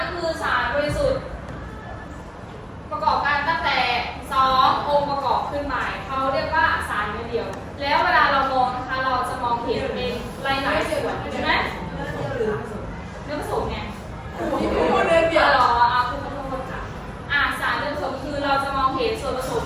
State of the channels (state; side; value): identical; both; correlation 1.00